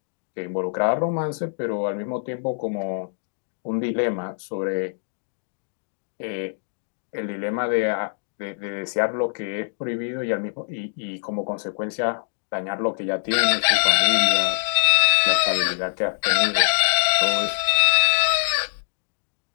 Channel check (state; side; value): silent; right; digital silence